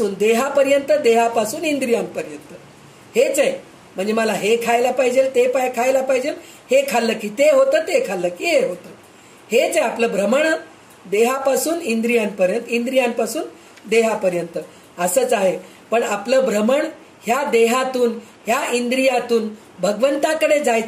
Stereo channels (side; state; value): both; identical; correlation 1.00